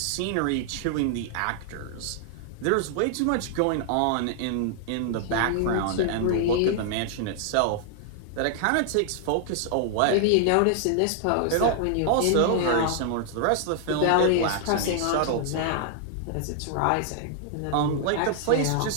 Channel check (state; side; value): different; both; correlation -0.01